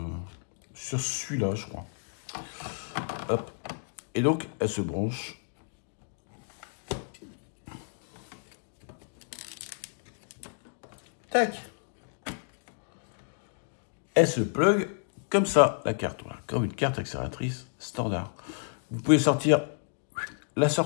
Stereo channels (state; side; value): silent; right; digital silence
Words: celui-là, je crois. Hop. Et donc, elle se branche. Tac. Elle se plug comme ça, la carte. Voilà, comme une carte accélératrice standard. Vous pouvez sortir la